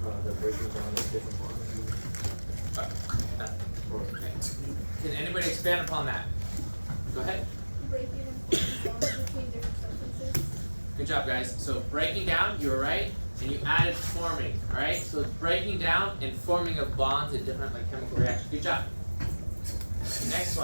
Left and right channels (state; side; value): inverted; both; correlation -1.00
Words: The breaking down of different molecules. Okay. Can anybody expand upon that? Go ahead. Breaking and forming bonds between different substances. Good job, guys. So breaking down, you were right, and you added forming. All right. So it's breaking down and forming of bonds in different chemical reactions. Good job. Next